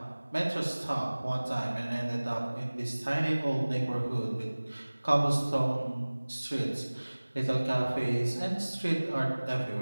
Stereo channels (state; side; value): inverted; both; correlation -1.00